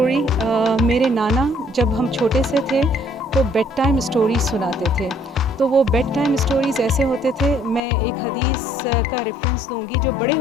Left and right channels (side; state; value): right; drops out; at 7.8 s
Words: मेरे नाना जब हम छोटे से थे तो बेड टाइम स्टोरीज सुनाते थे। तो वो बेड टाइम स्टोरीज़ ऐसे होते थे, मैं एक हदीस का रेफरेंस दूंगी जो बड़े